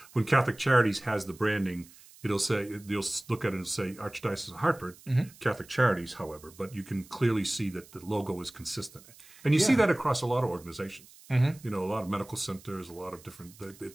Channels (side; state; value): right; noise; hiss, 23 dB below the sound